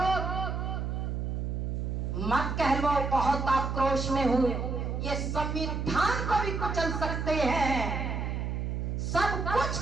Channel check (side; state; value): right; noise; hum, 2 dB below the sound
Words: मत कह लो बहुत आक्रोश में हूं, ये संविधान को भी कुचल सकते हैं, सब कुछ